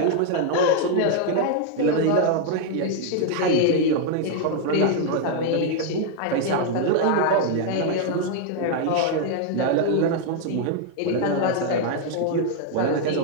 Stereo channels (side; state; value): both; different; correlation 0.00